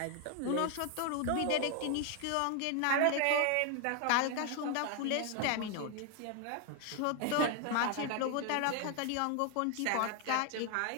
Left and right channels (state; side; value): different; both; correlation 0.00